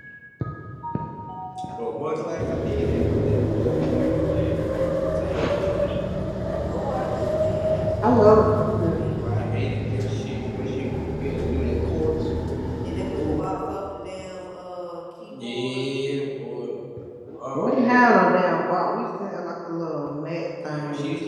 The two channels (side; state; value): both; identical; correlation 1.00